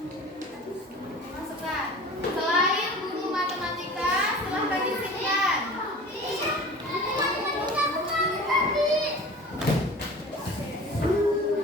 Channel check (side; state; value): both; normal; correlation 0.40